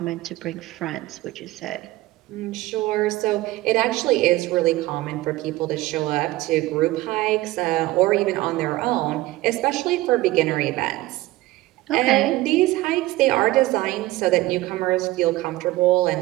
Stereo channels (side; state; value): left; quieter; 18.1 dB